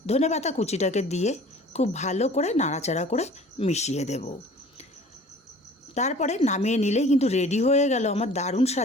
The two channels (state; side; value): normal; both; correlation 0.47